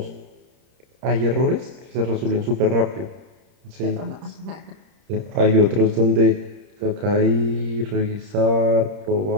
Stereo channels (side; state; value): left; late; 30 ms